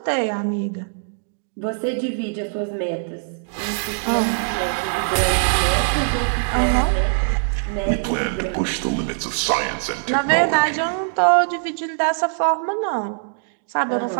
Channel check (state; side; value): silent; left; digital silence